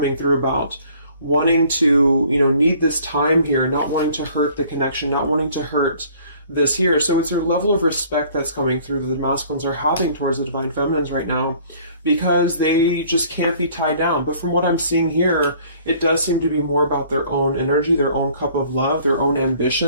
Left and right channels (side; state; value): both; inverted; correlation -0.55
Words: through about wanting to, need this time here, not wanting to hurt the connection, not wanting to hurt this here. So it's a level of respect that's coming through that the masculines are having towards the divine feminines right now, because they just can't be tied down. But from what I'm seeing here, it does seem to be more about their own energy, their own cup of love, their own